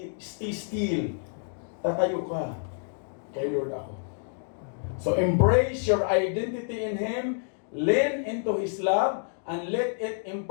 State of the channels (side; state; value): right; silent; digital silence